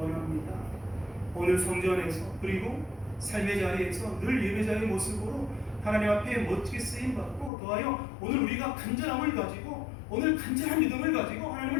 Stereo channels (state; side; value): drops out; right; at 7.5 s